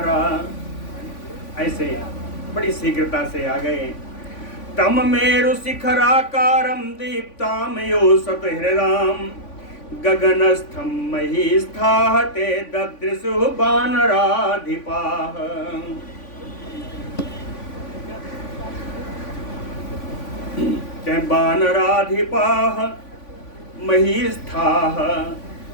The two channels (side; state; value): right; late; 3.5 ms